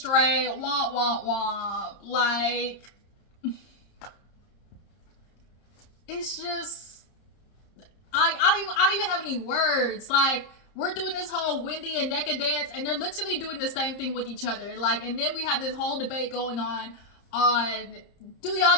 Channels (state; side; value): late; right; 30 ms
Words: womp womp womp. Like, it's just I don't even have any words. Like, we're doing this whole Wendy and Nneka dance, and they're literally doing the same thing with each other. Like, and then we have this whole debate going on do